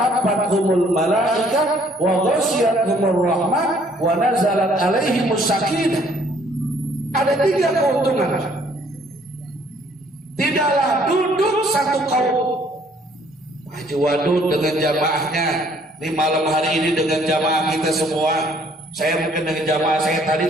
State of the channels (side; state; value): both; normal; correlation 0.62